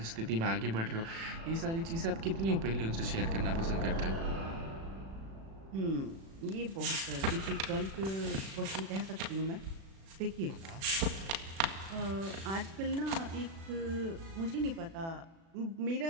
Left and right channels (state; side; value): late; left; 36 ms